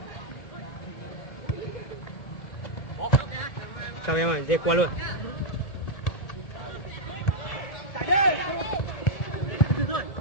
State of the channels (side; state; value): right; late; 1.7 ms